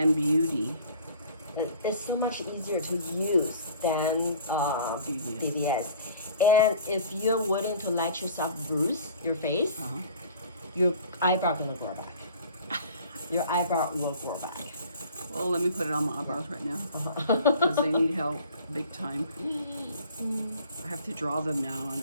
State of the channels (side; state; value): both; inverted; correlation -0.48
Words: beauty. It's so much easier to use than BBS. And if you're willing to let yourself bruise your face, your eyebrow gonna grow back. Your eyebrow will grow back. Well, let me put it on my eyebrows right now because they need help big time. I have to draw them now,